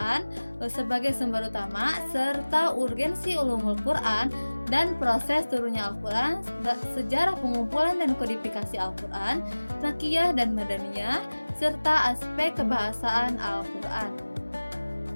sebagai sumber utama, serta urgensi ulumul Quran dan proses turunnya Al-Quran, sejarah pengumpulan dan kodifikasi Al-Quran, Makiyah dan Madaniyah, serta aspek kebahasaan Al-Quran.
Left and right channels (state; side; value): inverted; both; correlation -1.00